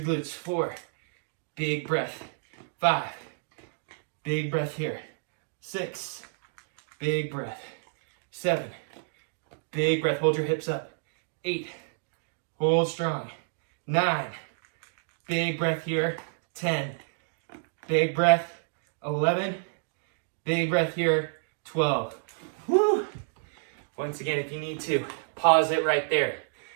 glutes. 4, big breath. 5, big breath here. 6, big breath. 7, big breath. Hold your hips up. 8, hold strong. 9, big breath here. 10, big breath. 11, big breath here. 12. Woo! Once again, if you need to, pause it right there.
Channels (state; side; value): silent; left; digital silence